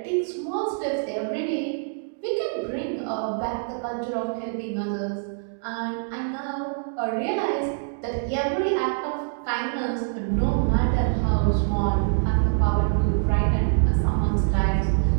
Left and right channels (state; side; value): silent; left; digital silence